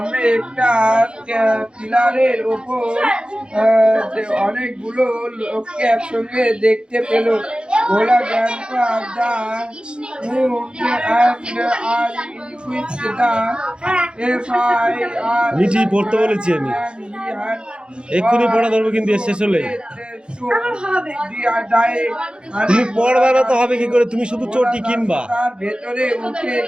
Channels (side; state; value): left; late; 0.052 ms